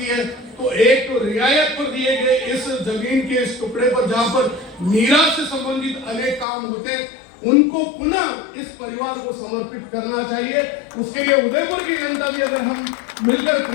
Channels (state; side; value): drops out; right; at 6.5 s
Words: है तो एक तो रियायत पर दिए गए इस जमीन के इस टुकड़े पर जहां पर मीरा से संबंधित अनेक काम होते उनको पुनः इस परिवार को समर्पित करना चाहिए। उसके लिए उदयपुर की जनता भी अगर हम मिलकर